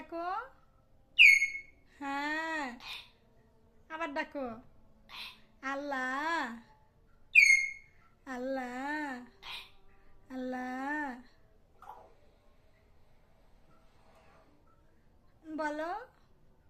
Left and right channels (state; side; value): identical; both; correlation 1.00